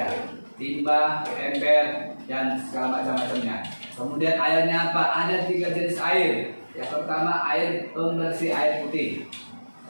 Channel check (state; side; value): inverted; both; correlation -1.00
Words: Timba, ember, dan segala macam-macamnya. Kemudian airnya apa? Ada 3 jenis air. Yang pertama air pembersih air putih.